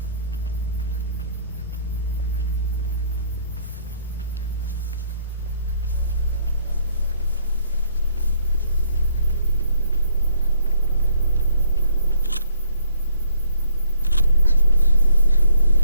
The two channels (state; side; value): inverted; both; correlation -0.64